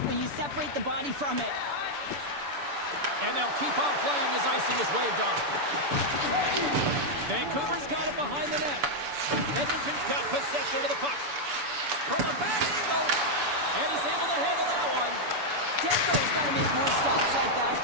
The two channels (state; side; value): late; left; 6.9 ms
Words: when you separate the body from it. And they'll keep on playing as icing is waved off. Vancouver's got it behind the net. Edmonton's got possession of the puck. From a bad angle, and he's able to handle that one. Demko's got to make more stops like that,